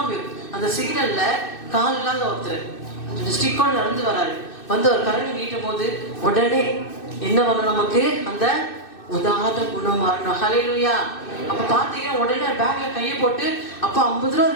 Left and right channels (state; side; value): late; right; 2.6 ms